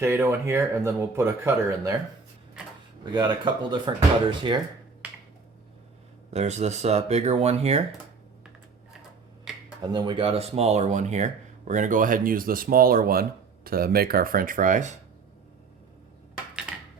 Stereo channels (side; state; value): left; quieter; 4.9 dB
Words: in here, and then we'll put a cutter in there. We got a couple different cutters here. There's this bigger one here, and then we got a smaller one here. We're going to go ahead and use the smaller one to make our French fries.